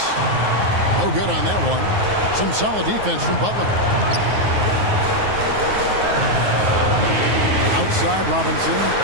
No good on that one. Some solid defense from Butler. Outside Robinson.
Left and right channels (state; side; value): late; left; 9.4 ms